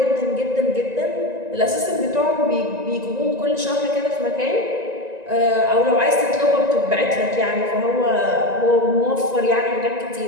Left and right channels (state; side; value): late; left; 1.9 ms